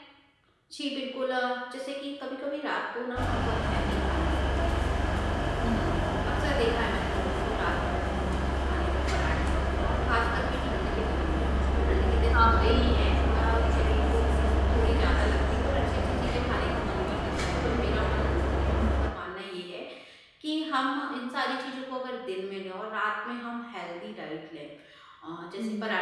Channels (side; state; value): both; identical; correlation 1.00